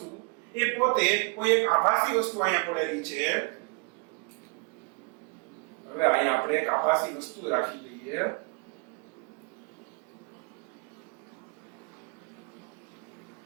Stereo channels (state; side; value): quieter; left; 31.8 dB